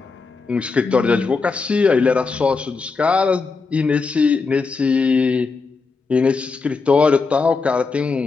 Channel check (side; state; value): right; quieter; 4.5 dB